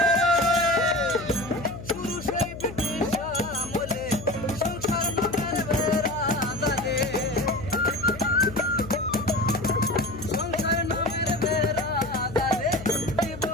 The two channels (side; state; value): left; noise; hum, 13 dB below the sound